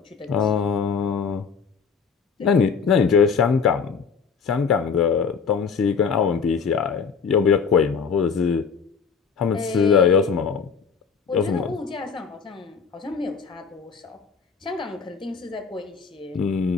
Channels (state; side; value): quieter; right; 6.0 dB